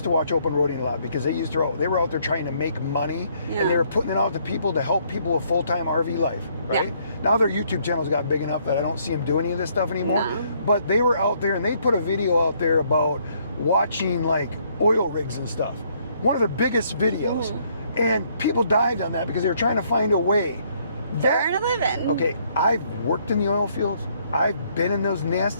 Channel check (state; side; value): inverted; both; correlation -0.68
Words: to watch open roading a lot because they were out there trying to make money, and they were putting it out to people to help people with full-time RV life, right? Yeah. Now their YouTube channels got big enough that I don't see them do any of this stuff anymore. No. But they were out there, and they put a video out there about watching like oil rigs and stuff. One of the biggest videos. And people dived on that because they were trying to find a way. Earn a living. Okay, I've worked in the oil fields. I've been in those